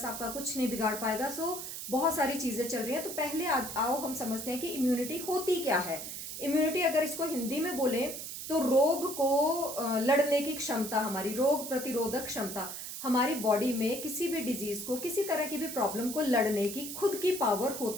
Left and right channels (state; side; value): noise; right; hiss, 7 dB below the sound